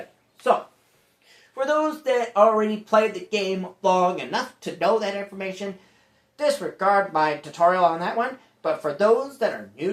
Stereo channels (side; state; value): both; identical; correlation 1.00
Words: So, for those that already played the game long enough to know that information, disregard my tutorial on that one. But for those that are